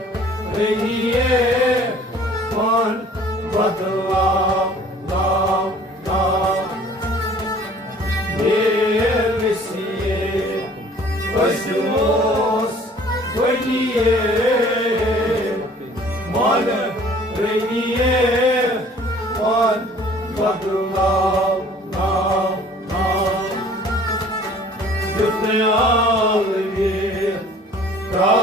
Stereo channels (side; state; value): both; normal; correlation 0.52